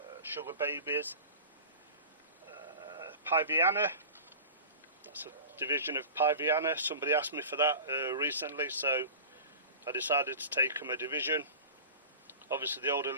Sugar Babies. Piviana, that's a division of Piviana. Somebody asked me for that recently, so I decided to take them a division. Obviously the older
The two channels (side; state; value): both; inverted; correlation -0.35